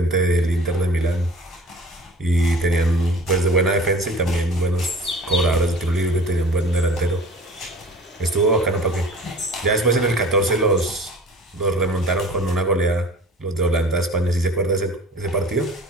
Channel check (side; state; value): both; normal; correlation 0.44